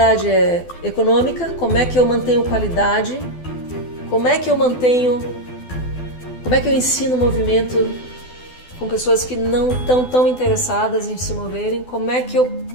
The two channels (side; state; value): right; late; 12 ms